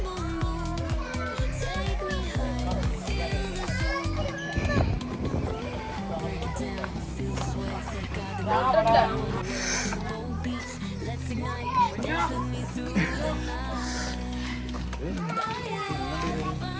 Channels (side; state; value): both; identical; correlation 1.00